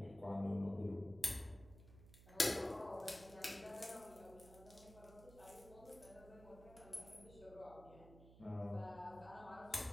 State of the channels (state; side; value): noise; right; hum, 18 dB below the sound